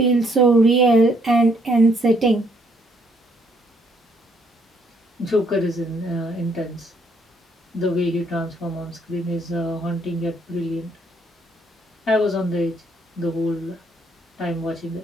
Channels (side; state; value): both; normal; correlation 0.68